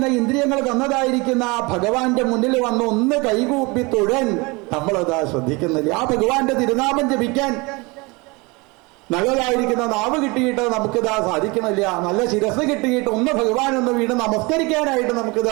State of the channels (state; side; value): quieter; left; 26.0 dB